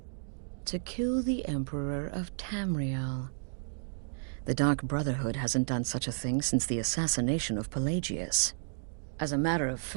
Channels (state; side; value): silent; left; digital silence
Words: To kill the Emperor of Tamriel. The Dark Brotherhood hasn't done such a thing since the assassination of Pelagius. As a matter of